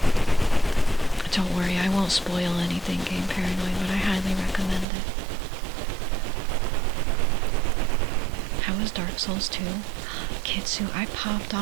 Don't worry, I won't spoil anything Game Paranoid, but I highly recommend it. How was Dark Souls 2? Kitsu, I popped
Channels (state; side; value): drops out; left; at 4.9 s